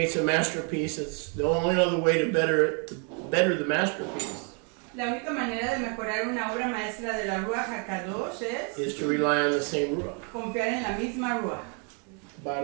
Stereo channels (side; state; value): left; quieter; 38.5 dB